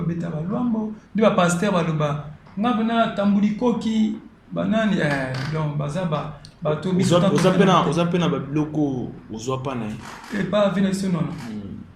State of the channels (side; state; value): both; identical; correlation 1.00